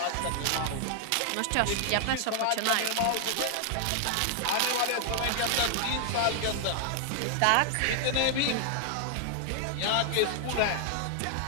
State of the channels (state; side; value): different; both; correlation 0.00